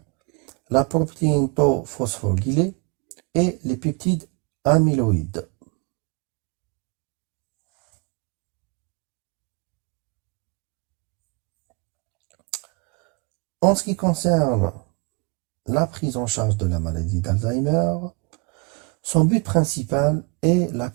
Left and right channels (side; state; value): left; quieter; 31.5 dB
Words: la protéine tau phosphorylée et les peptides amyloïdes. En ce qui concerne la prise en charge de la maladie d'Alzheimer, son but principal est la